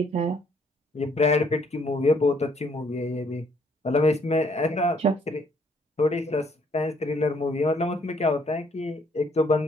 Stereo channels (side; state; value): both; normal; correlation 0.66